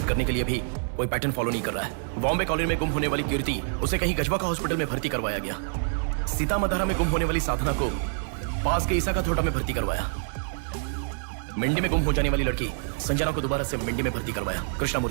करने के लिए भी कोई पैटर्न फॉलो नहीं कर रहा है। बॉम्बे कॉलोनी में गुम होने वाली कीर्ति, उसे कहीं गजवा का हॉस्पिटल में भर्ती करवाया गया। सीतामढ़ी में गुम होने वाली साधना को पास के ईसा का थोटा में भर्ती करवाया। मंडी में गुम हो जाने वाली लड़की संजना को दोबारा से मंडी में भर्ती करवाया,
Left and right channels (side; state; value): left; silent; digital silence